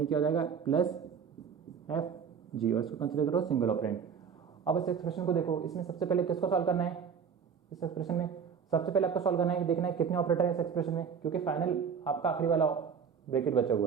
क्या हो जाएगा प्लस एफ जी, और इसको कंसिडर करो सिंगल ऑपरेंड। अब इस एक्सप्रेशन को देखो, इसमें सबसे पहले किसको सॉल्व करना है, इस एक्सप्रेशन में सबसे पहले आपको सॉल्व करना है कि देखना है कितने ऑपरेटर है इस एक्सप्रेशन में, क्योंकि फाइनल आपका आखिरी वाला ब्रैकेट बचा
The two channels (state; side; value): quieter; left; 6.8 dB